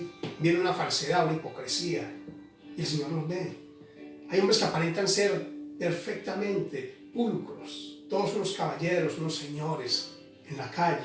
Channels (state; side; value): identical; both; correlation 1.00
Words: Viene una falsedad, una hipocresía. Y el Señor los ve. Hay hombres que aparentan ser perfectamente pulcros, todos unos caballeros, unos señores en la